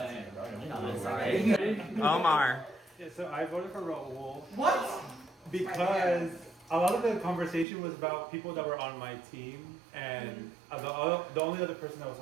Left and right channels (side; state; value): left; drops out; at 7.7 s